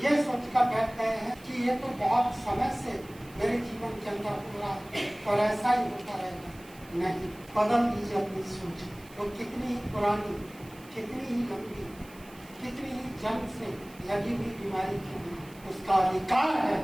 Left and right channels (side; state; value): right; noise; hiss, 23 dB below the sound